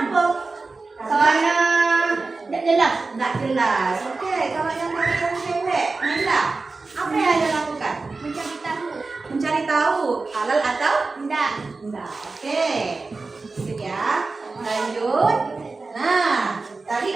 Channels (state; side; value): quieter; left; 3.8 dB